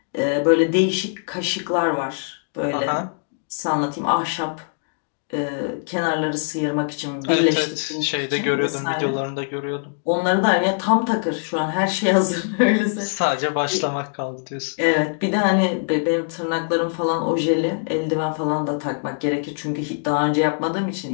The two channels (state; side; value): silent; right; digital silence